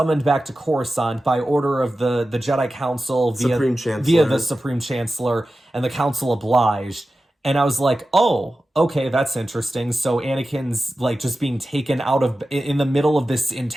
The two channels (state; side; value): normal; both; correlation 0.94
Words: back to Coruscant by order of the Jedi Council via the Supreme Chancellor, and the Council obliged. And I was like, oh, okay, that's interesting. So Anakin's like just being taken out of, in the middle of this